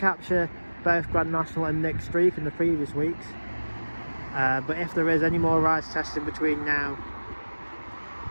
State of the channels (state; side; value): inverted; both; correlation -1.00